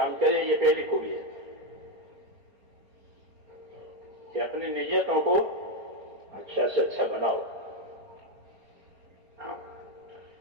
کرے, یہ پہلی خوبی ہے. کہ اپنی نیتوں کو اچھا سے اچھا بناؤ.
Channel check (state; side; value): late; left; 4.3 ms